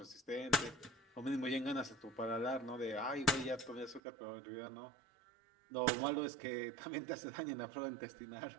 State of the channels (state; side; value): drops out; left; at 4.0 s